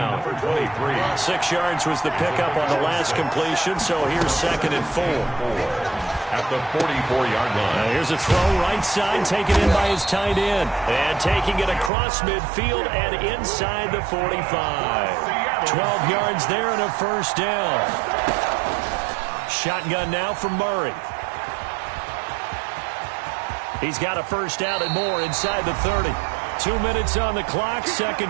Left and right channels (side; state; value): left; drops out; at 11.9 s